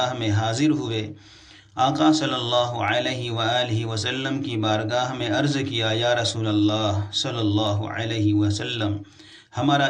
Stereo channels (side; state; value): both; identical; correlation 1.00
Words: میں حاضر ہوئے۔ آقا صلی اللہ علیہ وآلہ وسلم کی بارگاہ میں عرض کیا، یا رسول اللہ صلی اللہ علیہ وسلم، ہمارا